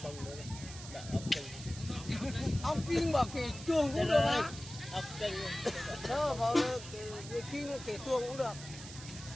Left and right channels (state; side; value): noise; right; hiss, 13 dB below the sound